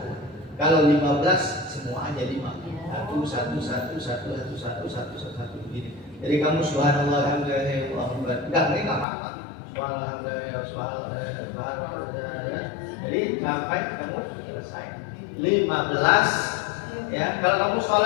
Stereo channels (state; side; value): drops out; right; at 9.1 s